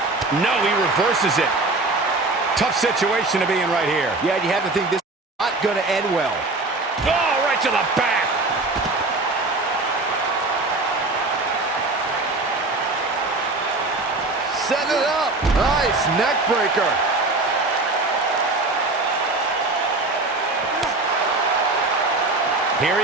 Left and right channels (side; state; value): left; quieter; 3.2 dB